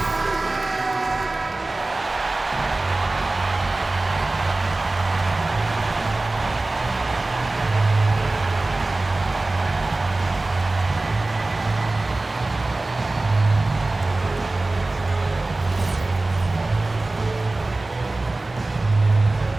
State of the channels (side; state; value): left; quieter; 3.0 dB